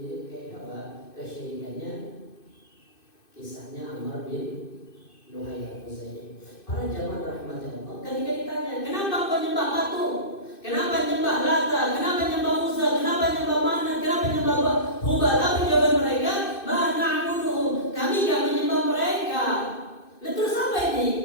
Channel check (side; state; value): right; late; 2.6 ms